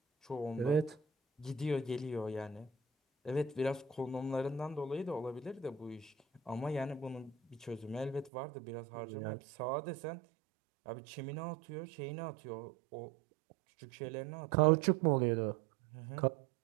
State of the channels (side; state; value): left; drops out; at 8.3 s